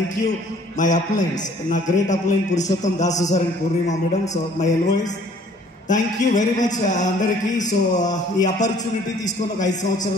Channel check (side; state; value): both; normal; correlation 0.57